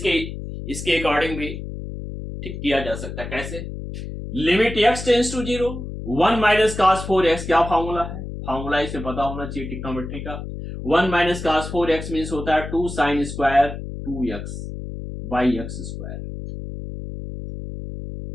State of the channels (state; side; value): noise; left; hum, 8 dB below the sound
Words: अकॉर्डिंग भी ठीक किया जा सकता है। कैसे? Limit x tends to 0 1 minus cos 4x, क्या फॉर्मूला है, फॉर्मूला इसे पता होना चाहिए ट्रिग्नोमेट्री का। 1 माइनस कास 4x मीन्स होता है 2 sign square 2x by x square.